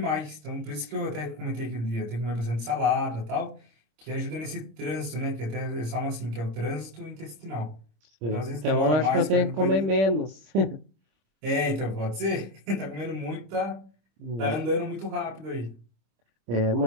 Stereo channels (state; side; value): late; left; 26 ms